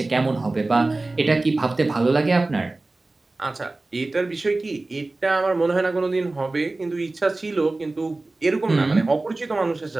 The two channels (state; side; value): quieter; left; 3.1 dB